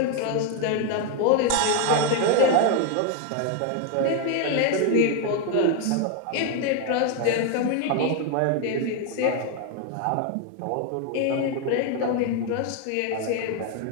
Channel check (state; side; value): different; both; correlation 0.01